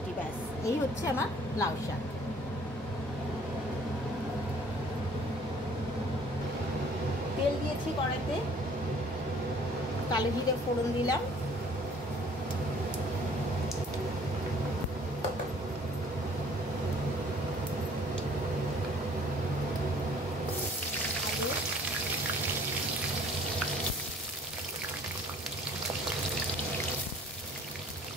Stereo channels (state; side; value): normal; both; correlation 0.55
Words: ব্যাস এই হচ্ছে আমার লাউ শাক। তেল দিয়েছি কড়াইতে, কালো জিরে ফোড়ন দিলাম,